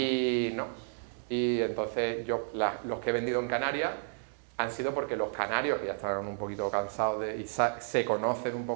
no. Y entonces los que he vendido en Canarias han sido porque los canarios, que ya están un poquito cansados y se conocen un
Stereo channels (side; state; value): left; silent; digital silence